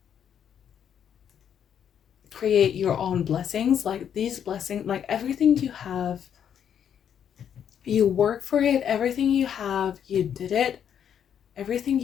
create your own blessings. Like these blessings, like everything you have, you work for it. Everything you have, you did it. Everything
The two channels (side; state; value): right; quieter; 8.8 dB